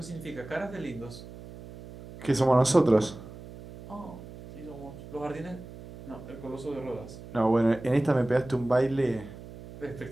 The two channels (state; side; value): noise; right; hum, 15 dB below the sound